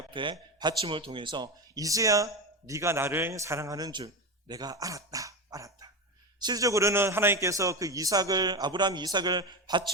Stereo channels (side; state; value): both; normal; correlation 0.19